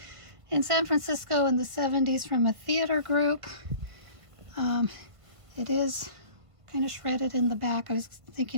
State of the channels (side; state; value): left; late; 1.5 ms